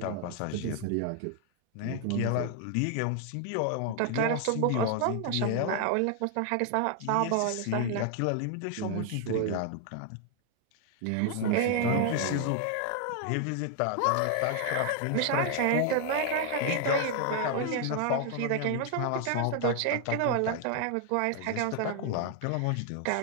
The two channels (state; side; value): different; both; correlation 0.00